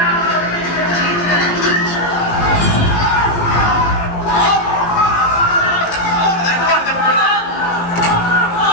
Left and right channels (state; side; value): late; right; 18 ms